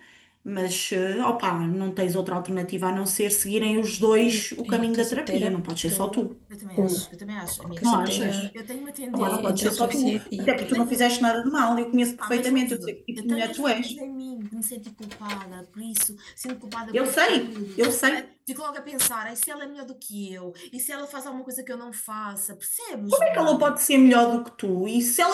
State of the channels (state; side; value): identical; both; correlation 1.00